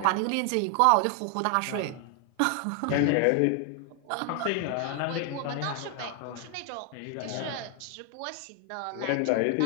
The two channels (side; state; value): both; different; correlation 0.00